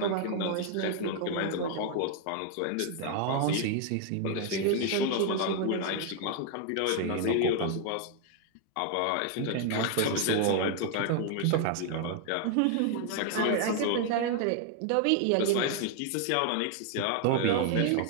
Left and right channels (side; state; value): both; different; correlation 0.00